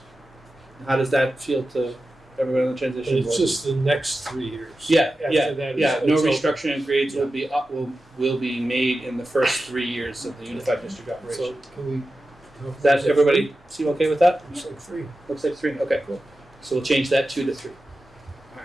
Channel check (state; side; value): normal; both; correlation 0.93